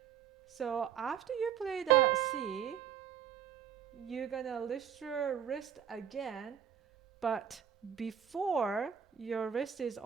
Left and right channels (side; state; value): left; quieter; 8.6 dB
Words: So after you play the C, you're gonna lift your wrist again, but before your wrist is